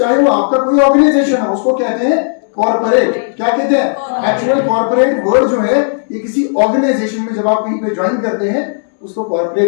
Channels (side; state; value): right; silent; digital silence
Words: वो आपका कोई ऑर्गेनाइजेशन हो, उसको कहते हैं कॉर्पोरेट। क्या कहते हैं? एक्चुअल कॉर्पोरेट वर्ड जो है ये किसी ऑर्गेनाइजेशन में जब आप कहीं पे ज्वाइन करते हैं उसको